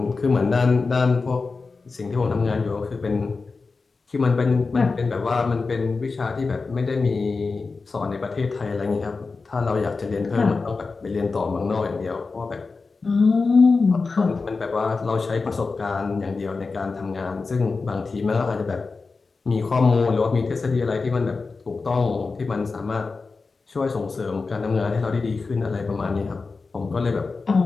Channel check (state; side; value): quieter; right; 4.2 dB